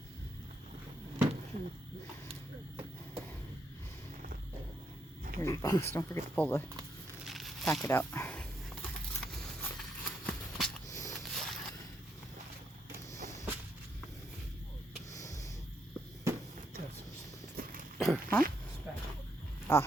Here's your box. Don't forget to pull the packet out. Huh? Ah.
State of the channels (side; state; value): both; normal; correlation 0.77